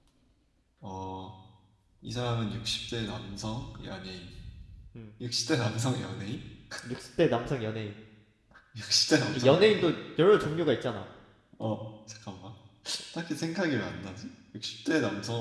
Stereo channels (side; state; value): both; identical; correlation 1.00